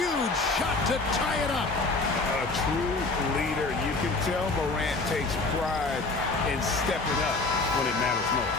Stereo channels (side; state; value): right; quieter; 3.5 dB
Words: shot to tie it up. A true leader. You can tell Morant takes pride in stepping up when it matters most.